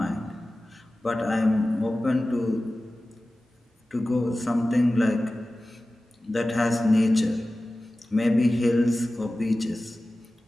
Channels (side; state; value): both; normal; correlation 0.96